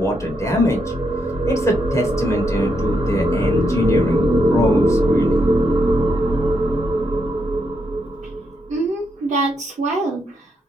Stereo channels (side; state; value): both; normal; correlation 0.80